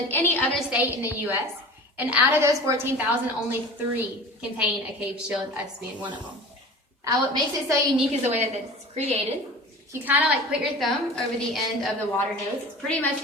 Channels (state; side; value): normal; both; correlation 0.38